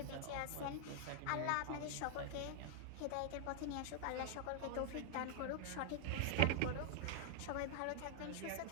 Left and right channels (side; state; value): both; different; correlation 0.00